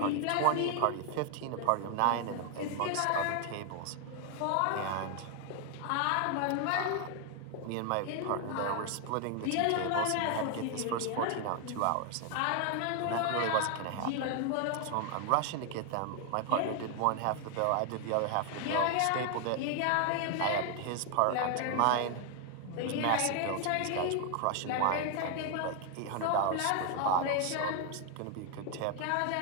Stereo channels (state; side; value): different; both; correlation 0.00